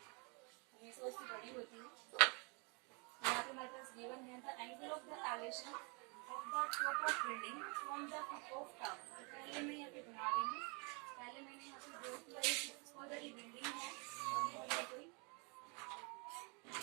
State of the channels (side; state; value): left; quieter; 33.2 dB